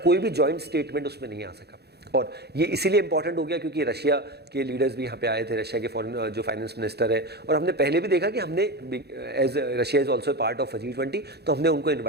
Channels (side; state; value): left; late; 0.48 ms